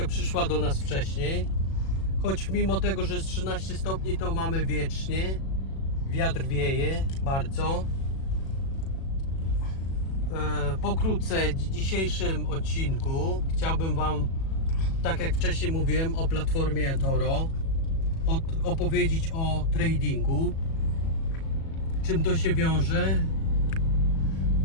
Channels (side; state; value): right; late; 37 ms